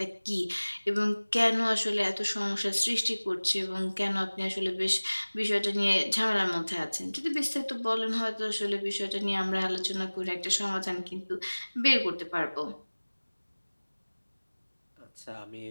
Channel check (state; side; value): inverted; both; correlation -1.00